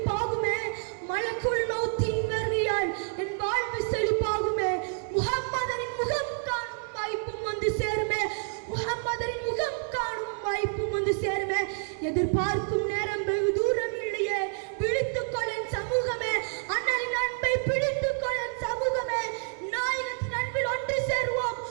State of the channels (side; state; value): left; silent; 59 dB below the other